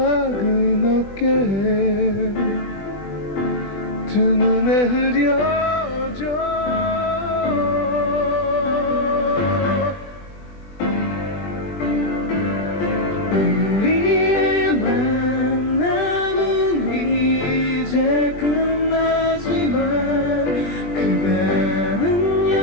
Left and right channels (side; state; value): right; late; 21 ms